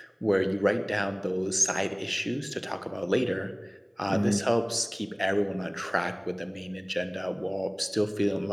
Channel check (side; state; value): both; identical; correlation 1.00